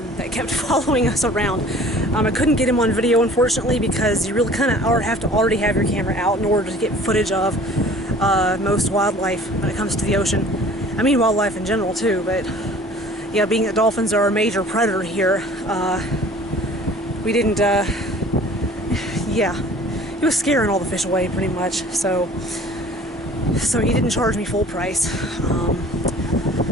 that kept following us around. I couldn't get him on video, unfortunately, because you really kind of have to already have your camera out in order to get footage of most wildlife when it comes to the ocean. I mean wildlife in general too, but yeah, being that dolphins are a major predator here, we didn't, yeah, he was scaring all the fish away pretty much, so he didn't charge me full price.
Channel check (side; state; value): both; normal; correlation 0.48